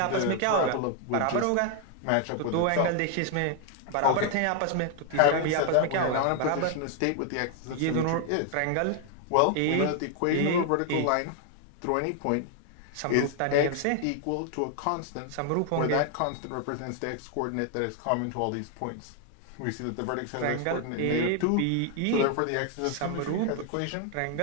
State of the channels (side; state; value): both; different; correlation 0.00